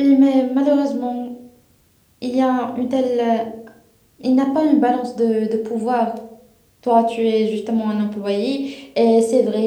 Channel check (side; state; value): both; identical; correlation 1.00